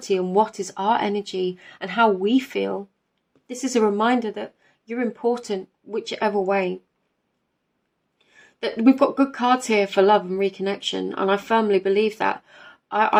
on what is our energy and how we feel. This is a reminder that you're important, whichever way. That we've got good cards here for love and reconnection, and I firmly believe that.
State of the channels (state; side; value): identical; both; correlation 1.00